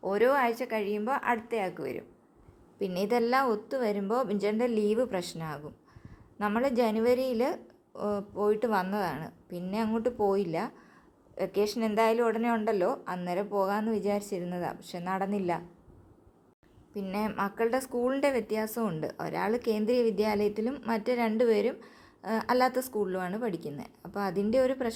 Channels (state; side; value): identical; both; correlation 1.00